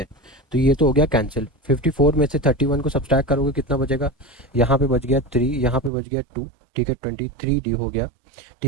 तो ये तो हो गया कैंसिल, 54 में से 31 को सब्सट्रैक्ट करोगे कितना बचेगा, यहाँ पे बच गया 3, यहाँ पे बच गया 2। ठीक है, 23d हो गया।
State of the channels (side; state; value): left; drops out; at 5.9 s